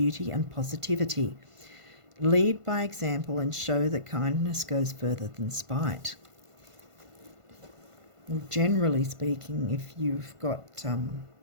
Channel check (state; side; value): late; left; 1.5 ms